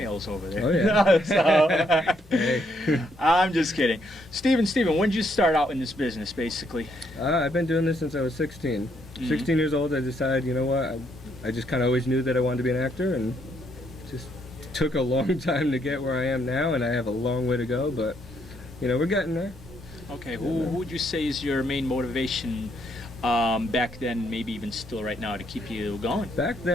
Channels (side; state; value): both; normal; correlation 0.73